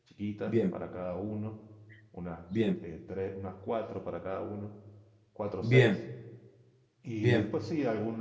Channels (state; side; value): identical; both; correlation 1.00